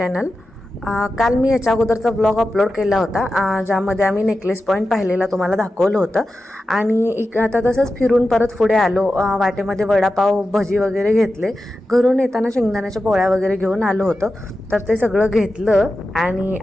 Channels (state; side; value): normal; both; correlation 0.92